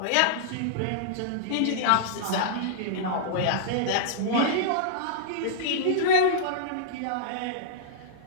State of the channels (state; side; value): different; both; correlation -0.02